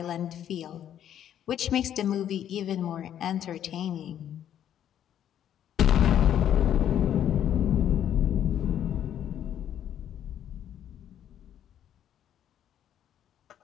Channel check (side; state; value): right; quieter; 10.3 dB